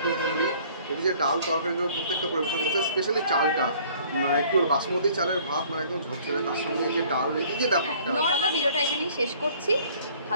হোমলি। এই যে ডাল তরকারিগুলো প্রত্যেকটা পরিবেশন করছে, স্পেশালি চালটা মানে কি বলবো বাসমতি চালের ভাত, মানে একদম ঝরঝরে, তার সঙ্গে এই যে ডাল, এই যে ব্যাপারটা। চলো ভিডিওটা এখানেই শেষ করছি।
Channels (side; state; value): both; inverted; correlation -0.55